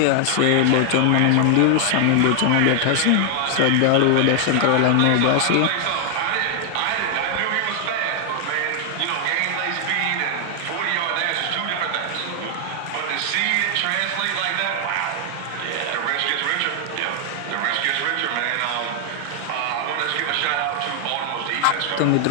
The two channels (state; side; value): different; both; correlation 0.00